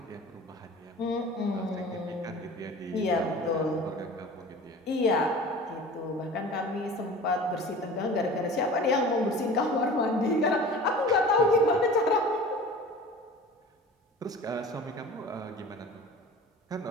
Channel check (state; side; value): normal; both; correlation 0.39